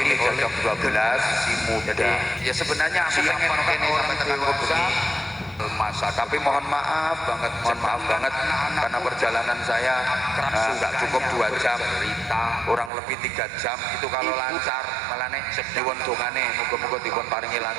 ini jam 12 si muda. Ya sebenarnya aku pengen kene sampai tekan kubur masa, tapi mohon maaf banget karena perjalanan saya nggak cukup 2 jam, kurang lebih 3 jam itu kalau lancar. Malah nih diwon dongane muga-muga dipun paringi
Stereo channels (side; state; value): left; drops out; at 12.9 s